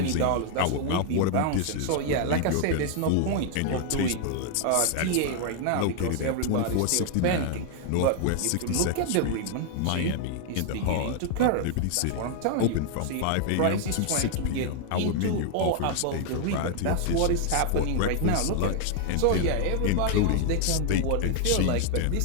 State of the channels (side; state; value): both; different; correlation 0.00